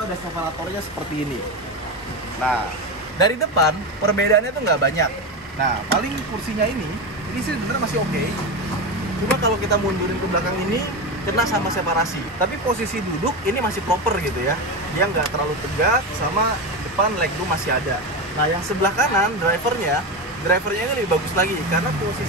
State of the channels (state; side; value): normal; both; correlation 0.18